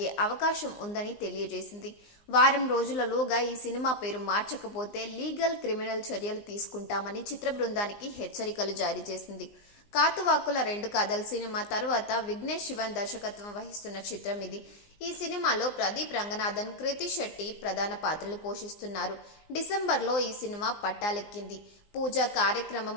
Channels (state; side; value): late; right; 19 ms